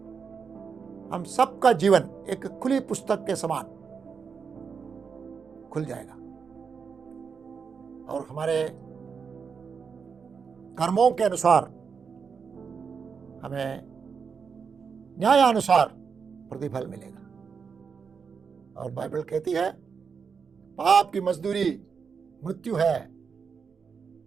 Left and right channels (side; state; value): left; quieter; 5.9 dB